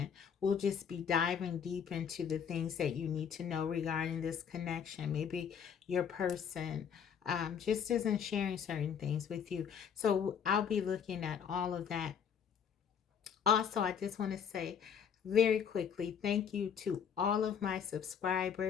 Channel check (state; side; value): quieter; right; 7.6 dB